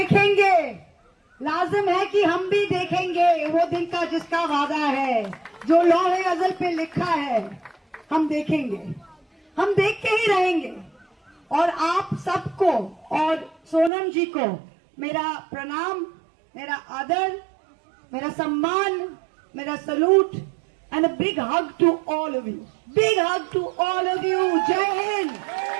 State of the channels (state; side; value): drops out; left; at 13.9 s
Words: लाजिम है कि हम भी देखेंगे वो दिन का जिसका वादा है, जो लौहे अज़ल पे लिखा है। हम देखेंगे, हम देख के ही रहेंगे। और आप सबको और सोनम जी को मेरा प्रणाम, मेरा आदर, मेरा सम्मान, मेरा salute and a big hug to all of you. Big hug to all of you. Jai Hind.